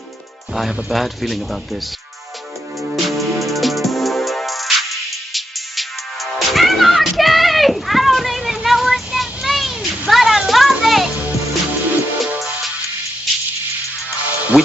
I have a bad feeling about this. Anarchy! I don't even know what that means, but I love it. We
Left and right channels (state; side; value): normal; both; correlation 0.83